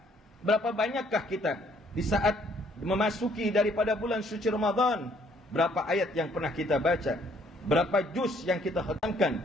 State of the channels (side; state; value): both; normal; correlation 0.64